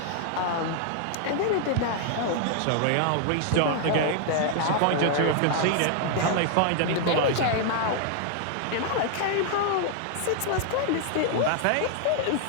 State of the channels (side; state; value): both; different; correlation 0.00